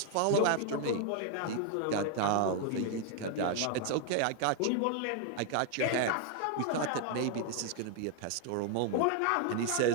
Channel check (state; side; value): different; both; correlation 0.01